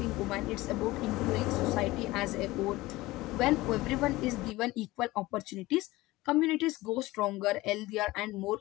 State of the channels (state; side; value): quieter; right; 19.1 dB